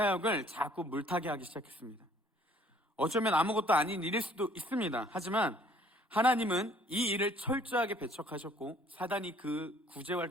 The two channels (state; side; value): normal; both; correlation 0.59